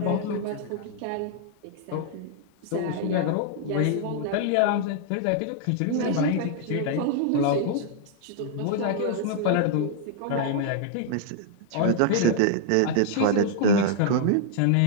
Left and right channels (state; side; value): different; both; correlation -0.01